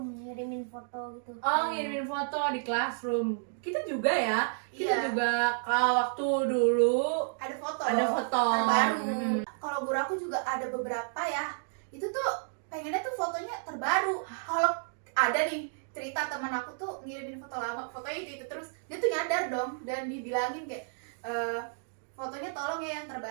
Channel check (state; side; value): silent; left; digital silence